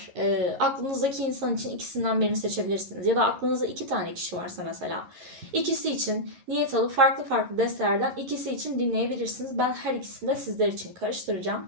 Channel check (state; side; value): late; left; 11 ms